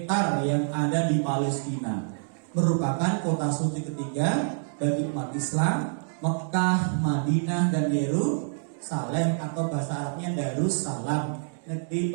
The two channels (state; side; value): silent; left; digital silence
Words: yang ada di Palestina. Merupakan kota suci ketiga bagi umat Islam. Mekah, Madinah, dan Yerusalem atau bahasa Arabnya Darussalam, negeri